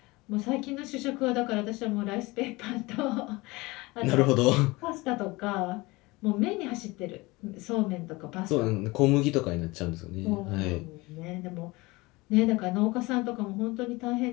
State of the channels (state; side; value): quieter; right; 22.7 dB